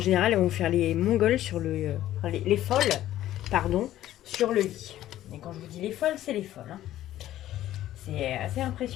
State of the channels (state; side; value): quieter; right; 13.4 dB